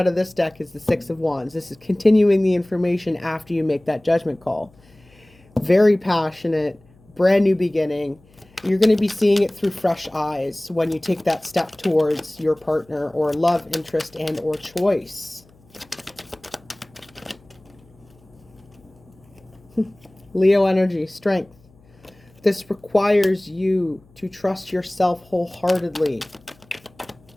of this deck is the 6 of Wands. This is continuing the information after you make that judgment call. Very passionate, brand new beginning. You're going to be seeing it through fresh eyes when you take that step towards your partner or love interest and or choice. Leo energy, strength. This requires you to trust yourself wholeheartedly.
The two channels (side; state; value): left; noise; hum, 29 dB below the sound